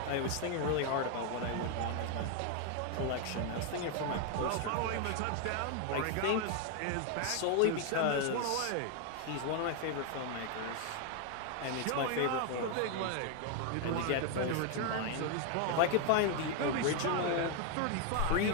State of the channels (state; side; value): different; both; correlation 0.01